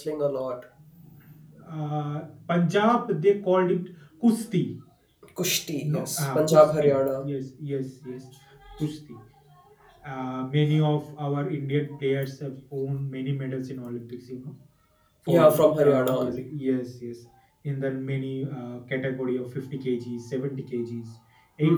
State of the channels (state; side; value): identical; both; correlation 1.00